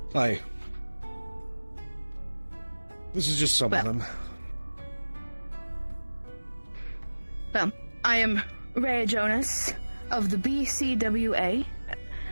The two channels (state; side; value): inverted; both; correlation -1.00